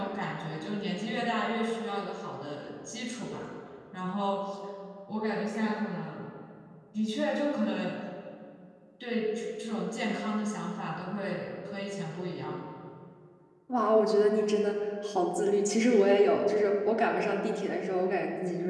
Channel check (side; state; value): both; identical; correlation 1.00